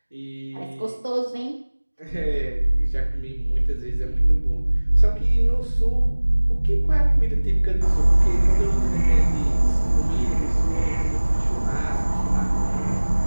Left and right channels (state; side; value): inverted; both; correlation -1.00